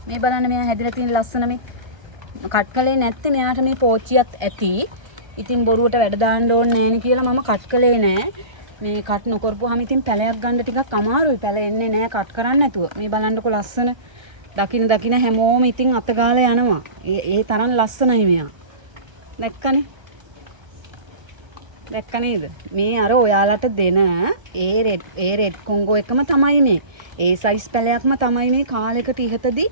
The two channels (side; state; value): left; late; 1.3 ms